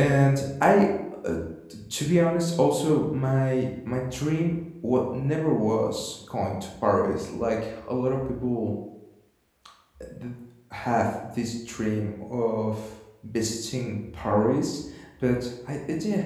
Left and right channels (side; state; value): both; identical; correlation 1.00